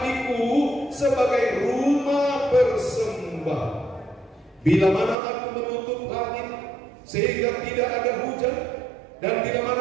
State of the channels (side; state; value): left; drops out; at 5.2 s